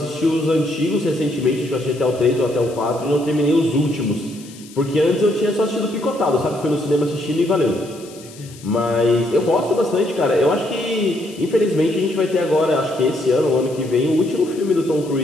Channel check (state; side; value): noise; left; hiss, 21 dB below the sound